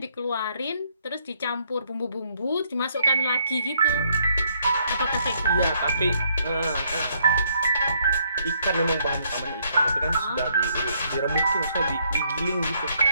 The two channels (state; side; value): inverted; both; correlation -0.70